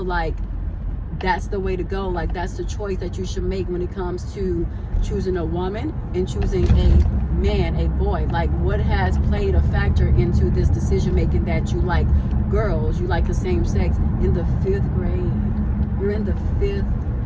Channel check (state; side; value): identical; both; correlation 1.00